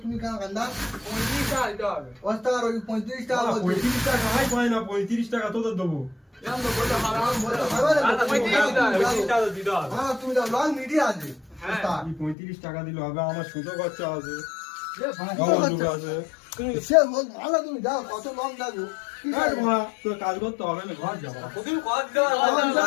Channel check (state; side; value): drops out; right; at 12.4 s